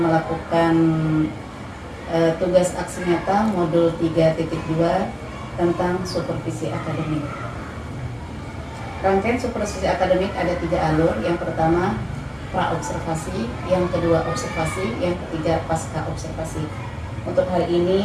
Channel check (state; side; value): identical; both; correlation 1.00